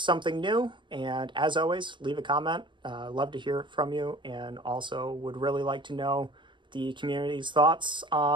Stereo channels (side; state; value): left; late; 0.23 ms